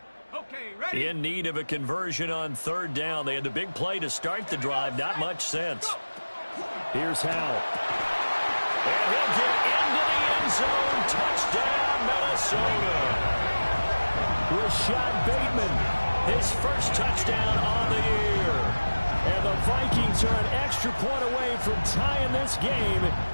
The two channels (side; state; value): both; inverted; correlation -1.00